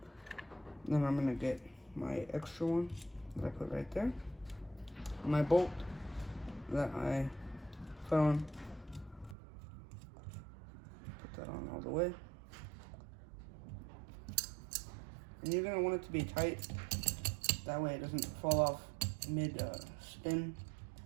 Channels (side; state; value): left; drops out; at 9.3 s